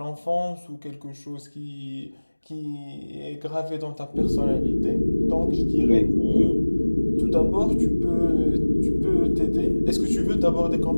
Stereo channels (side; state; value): both; inverted; correlation -1.00